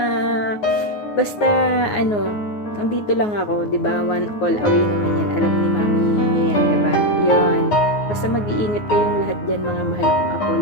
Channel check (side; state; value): right; late; 9.6 ms